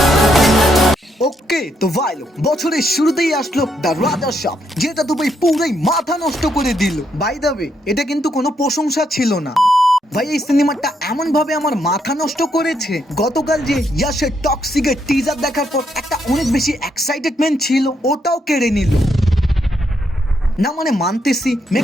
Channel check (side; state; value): both; normal; correlation 0.77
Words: ওকে তো ভাই লোক বছরের শুরুতেই আসলো দ্য রাজা সাপ, যেটা তো ভাই পুরাই মাথা নষ্ট করে দিল। বাই দ্য ওয়ে, এটা কিন্তু কোনো প্রশংসা ছিল না ভাই। এই সিনেমাটা এমন ভাবে আমার মাথা নষ্ট করেছে। গতকাল যে ইয়াশের টক্সিকের টিজার দেখার পর একটা অনেক বেশি এক্সাইটেডমেন্ট ছিল, ওটাও কেড়ে নিল। না মানে মানতেছি